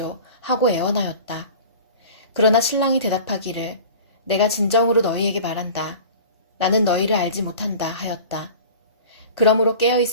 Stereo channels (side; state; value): both; inverted; correlation -0.40